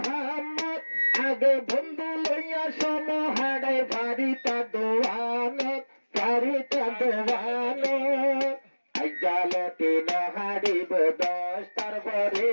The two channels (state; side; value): inverted; both; correlation -1.00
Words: আগে বন্ধু লইয়া সমহাড়ে বাড়িটা দোয়ানত বাড়িটা দোয়ানো জালতি নহাড়িব 10টার পরে